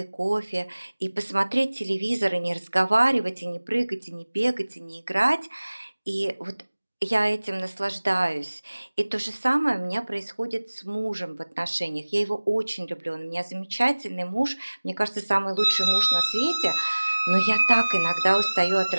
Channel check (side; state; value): both; inverted; correlation -1.00